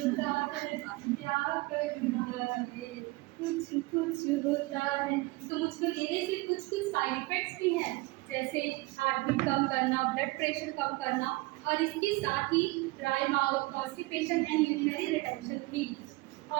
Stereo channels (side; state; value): left; quieter; 22.4 dB